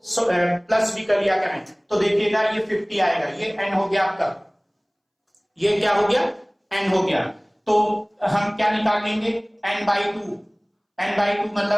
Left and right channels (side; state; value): both; identical; correlation 1.00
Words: प्लस भी कर लिया करें तो देखिएगा ये 50 आएगा, ये n हो गया आपका, ये क्या हो गया, n हो गया। तो हम क्या निकाल लेंगे, n/2, n/2